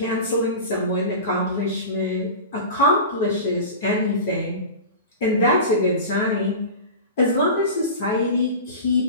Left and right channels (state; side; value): inverted; both; correlation -0.31